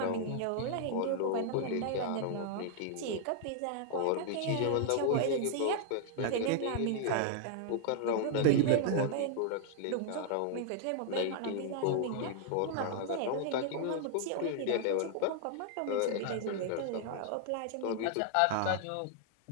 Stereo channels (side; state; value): both; different; correlation -0.01